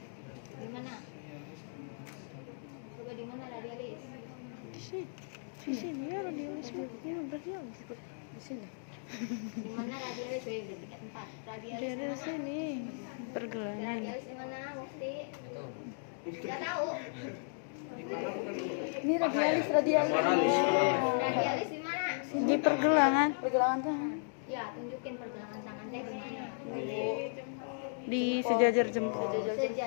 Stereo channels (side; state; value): right; silent; digital silence